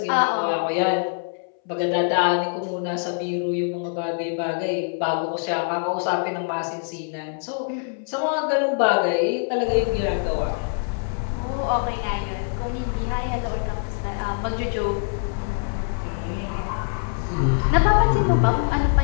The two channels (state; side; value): silent; right; 63 dB below the other